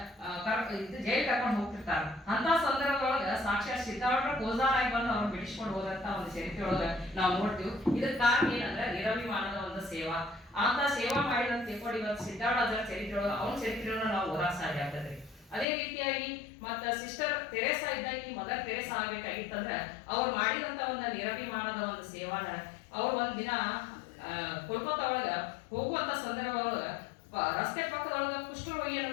ಜೈಲ್ ಕರ್ಕೊಂಡು ಹೋಗ್ತಿರ್ತಾರ. ಅಂತ ಸಂದರ್ಭದೊಳಗ ಸಾಕ್ಷಾತ್ ಸಿದ್ದಾರೂಢರ ಕೋಜಾರಾಗಿ ಬಂದು ಅವ್ರನ್ನ ಬಿಡಿಸ್ಕೊಂಡು ಹೋದಂತ ಒಂದು ಚರಿತ್ರೆ ಒಳಗ ನಾವು ನೋಡ್ತೀವಿ. ಇದಕ್ಕೆ ಕಾರಣ ಏನಂದ್ರೆ ನಿರಭಿಮಾನದ ಒಂದು ಸೇವಾ. ಅಂತ ಸೇವಾ ಮಾಡಿದಂತ ತಿಳ್ಕೊಂಡು ಇವತ್ತು ಸಿದ್ದಾರೂಢ ಅಜ್ಜರ ಚರಿತ್ರೆ ಒಳಗ ಅವನ ಚರಿತ್ರೆಯನ್ನು ನಾವು ಓದಾಕ ಸಾಧ್ಯ ಆಗ್ತದೆ. ಅದೇ ರೀತಿಯಾಗಿ ಮತ್ತ ಸಿಸ್ಟರ್ ತೆರೇಸಾ ಇದ್ದಾಗ ಮದರ್ ತೆರೇಸಾ ಆಗ್ಬೇಕಾಗಿತ್ತಂದ್ರೆ ಅವ್ರು ಮಾಡಿದಂತ ಒಂದು ನಿರಭಿಮಾನದ ಒಂದು ಸೇವಾನ ಅವ್ರು ಒಂದ್ ದಿನ ಕೋಲ್ಕತ್ತಾ ಒಳಗ ಹೋಗುವಂತ ಸಂದರ್ಭ ಒಳಗ ರಸ್ತೆ ಪಕ್ಕದೊಳಗ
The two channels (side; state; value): right; drops out; at 15.7 s